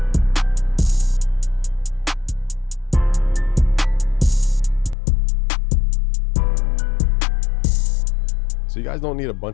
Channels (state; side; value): drops out; right; at 5.0 s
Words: So you guys don't need a